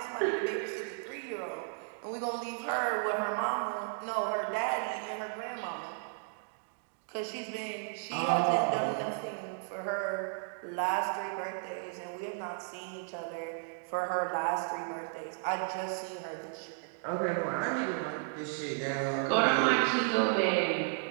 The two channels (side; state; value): left; silent; digital silence